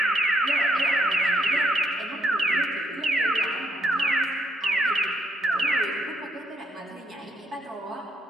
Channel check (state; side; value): normal; both; correlation 0.74